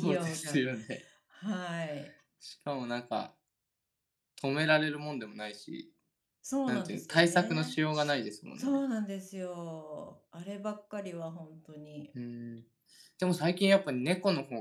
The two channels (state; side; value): identical; both; correlation 1.00